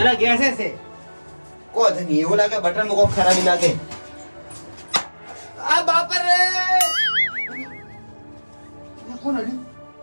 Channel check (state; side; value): inverted; both; correlation -1.00